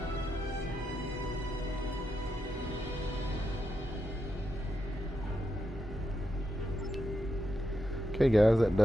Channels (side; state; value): both; normal; correlation 0.85